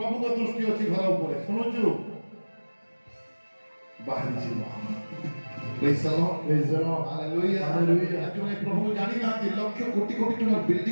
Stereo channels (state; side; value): inverted; both; correlation -1.00